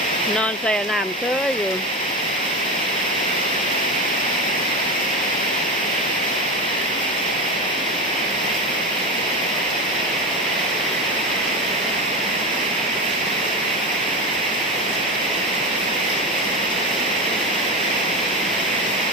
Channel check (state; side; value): normal; both; correlation 0.20